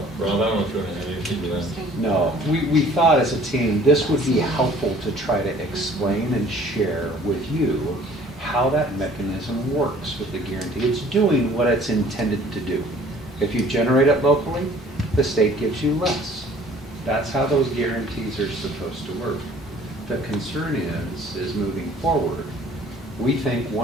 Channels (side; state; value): both; normal; correlation 0.53